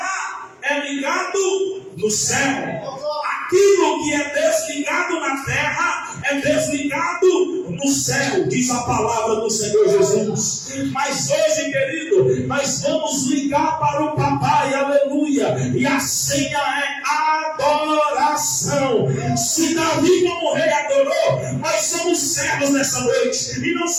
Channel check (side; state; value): both; identical; correlation 1.00